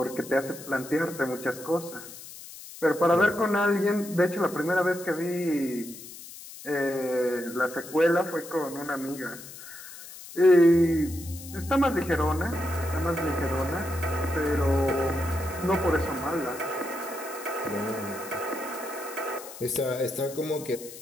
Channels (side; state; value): left; noise; hiss, 15 dB below the sound